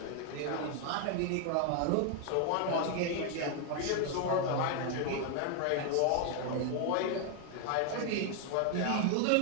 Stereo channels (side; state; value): both; different; correlation 0.00